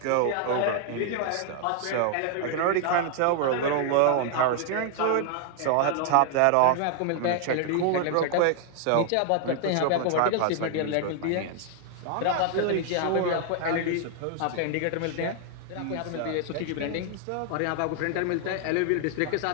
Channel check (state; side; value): different; both; correlation 0.00